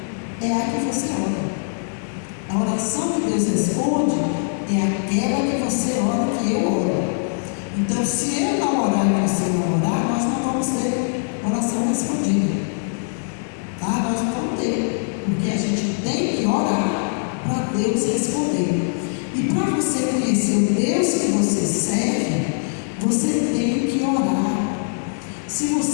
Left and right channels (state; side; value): silent; right; digital silence